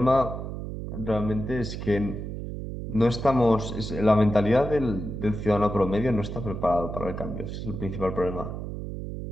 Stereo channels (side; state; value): right; noise; hum, 6 dB below the sound